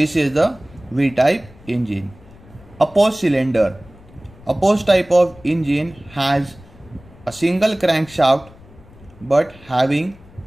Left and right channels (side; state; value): left; noise; rumble, 23 dB below the sound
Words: is the V-type engine. Opposed cylinder. Opposed type of engine has a single crankshaft but having